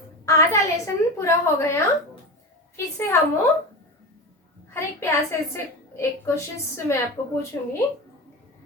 आधा लेसन पूरा हो गया। फिर से हम हर एक प्यासे से एक क्वेश्चन मैं आपको पूछूंगी।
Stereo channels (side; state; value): both; normal; correlation 0.25